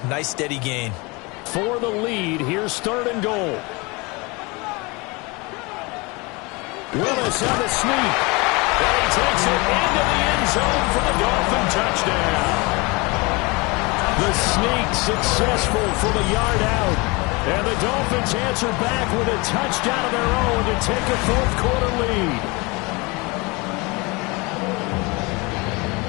Nice, steady gain. For the lead, here's third and goal. Willis on the sneak. And he takes it into the end zone for the Dolphin touchdown. The sneak successful from a yard out. And the Dolphins answer back with a touchdown of their own to take a fourth quarter lead.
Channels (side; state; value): right; quieter; 26.5 dB